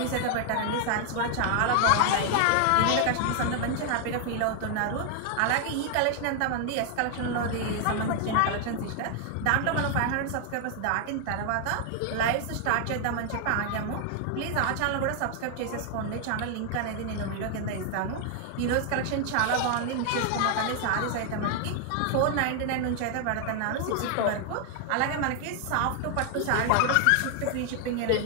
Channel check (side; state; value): both; different; correlation 0.00